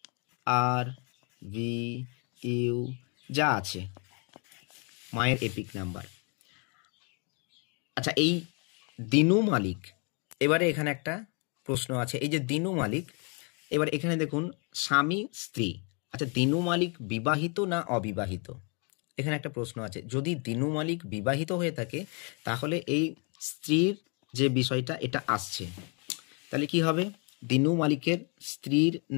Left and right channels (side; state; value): right; quieter; 35.9 dB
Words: আর ভি ইউ যা আছে মায়ের এপিক নাম্বার। আচ্ছা এই দিনু মালিক, এবারে এখানে একটা প্রশ্ন আছে, এই যে দিনু মালিক, এবার এখানে দেখুন স্বামী স্ত্রী, আচ্ছা দিনু মালিক বিবাহিত না অবিবাহিত, এখানে একটা প্রশ্ন আছে। যদি দিনু মালিক বিবাহিত হয়ে থাকে তাহলে এই স্ত্রীর যে বিষয়টা এটা আসছে, তাহলে কি হবে? দিনু মালিকের স্ত্রীর